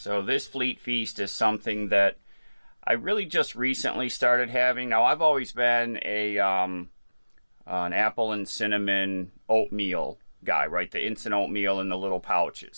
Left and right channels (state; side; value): inverted; both; correlation -1.00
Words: this fleet feast is something that I really just recently started having. Now I've always been an apple and cinnamon oatmeal guy, right? The instant oatmeal in the little